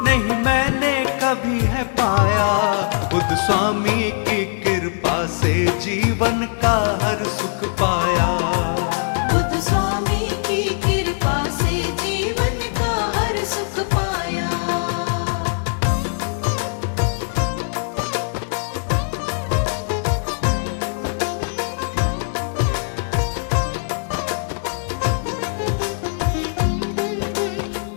नहीं मैंने कभी है पाया। बुद्ध स्वामी की कृपा से जीवन का हर सुख पाया। बुद्ध स्वामी की कृपा से जीवन का हर सुख पाया।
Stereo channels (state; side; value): silent; right; digital silence